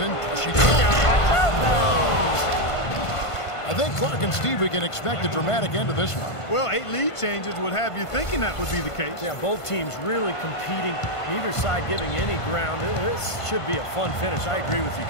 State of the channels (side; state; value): right; late; 1.5 ms